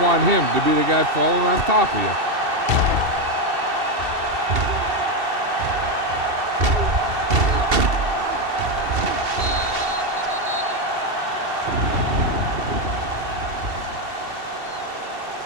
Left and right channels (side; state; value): left; late; 2.7 ms